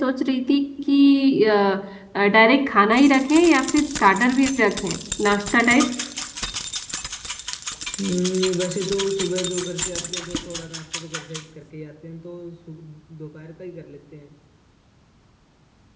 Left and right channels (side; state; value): both; identical; correlation 1.00